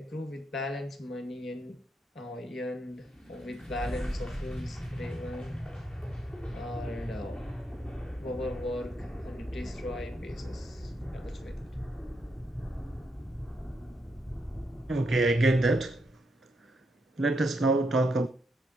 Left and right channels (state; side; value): normal; both; correlation 0.80